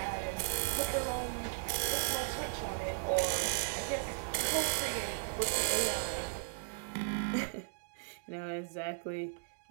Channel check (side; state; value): left; silent; digital silence